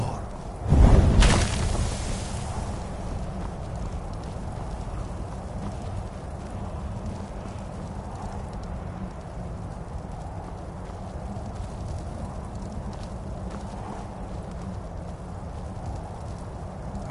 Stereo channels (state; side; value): identical; both; correlation 1.00